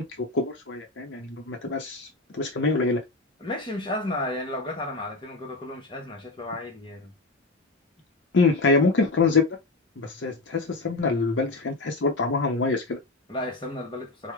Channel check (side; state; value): right; quieter; 3.3 dB